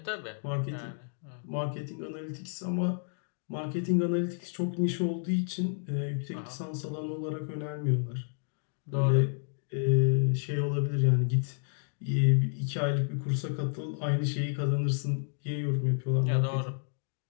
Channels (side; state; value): right; silent; digital silence